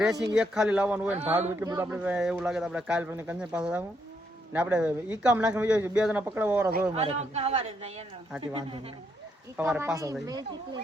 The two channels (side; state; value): both; normal; correlation 0.76